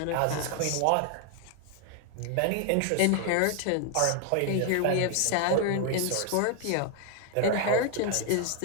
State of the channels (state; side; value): different; both; correlation 0.00